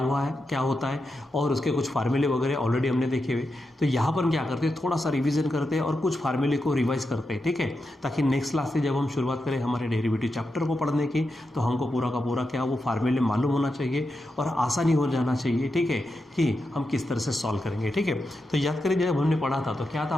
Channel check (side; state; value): both; normal; correlation 0.88